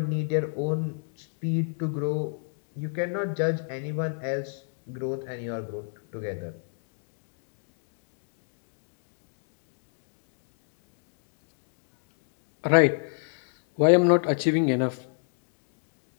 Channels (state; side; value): silent; right; digital silence